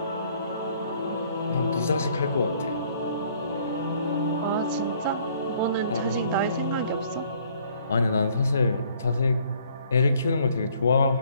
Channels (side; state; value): both; inverted; correlation -0.61